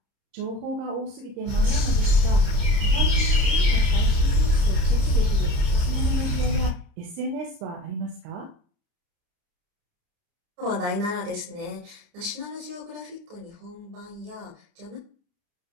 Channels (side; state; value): left; late; 30 ms